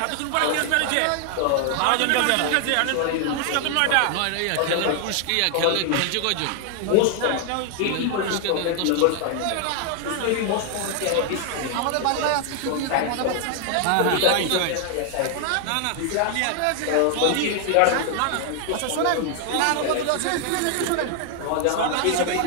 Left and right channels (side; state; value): both; different; correlation 0.00